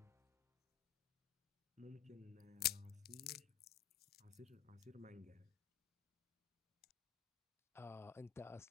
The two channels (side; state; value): right; quieter; 9.9 dB